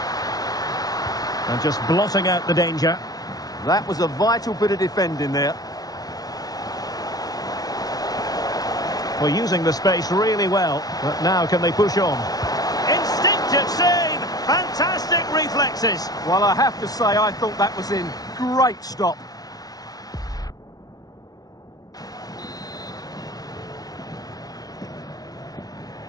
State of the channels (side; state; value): right; late; 0.18 ms